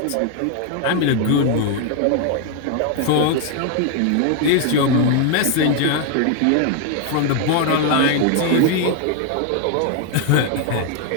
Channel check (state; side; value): different; both; correlation 0.00